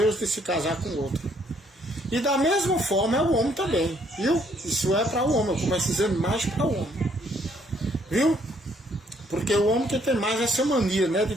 de se casar com outro. E da mesma forma é o homem também, viu? Isso é para o homem, eu começo dizendo mais para o homem. Viu? Porque o homem que tem mais essa mania, né, de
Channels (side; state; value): both; normal; correlation 0.67